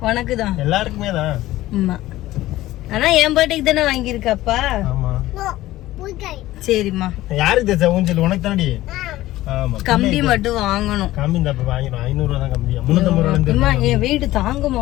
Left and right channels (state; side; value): quieter; right; 16.1 dB